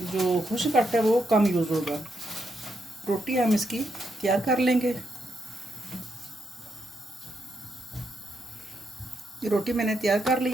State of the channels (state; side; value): normal; both; correlation 0.80